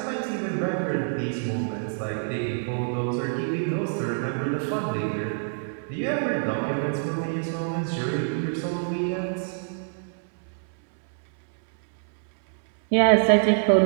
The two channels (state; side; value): silent; left; 61 dB below the other